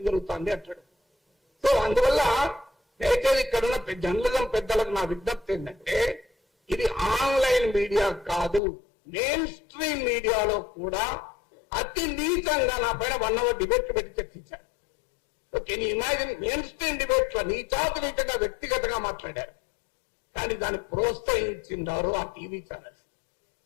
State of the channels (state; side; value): drops out; right; at 8.6 s